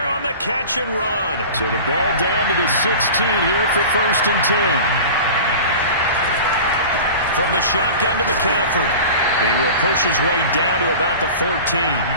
on the catch and run. So the ball down to the 16 here for 1st and 10. From the shotgun to McCaffrey. He will push his way down to about the 14.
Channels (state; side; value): inverted; both; correlation -0.36